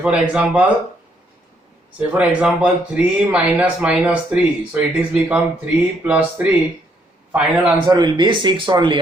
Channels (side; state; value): both; normal; correlation 0.71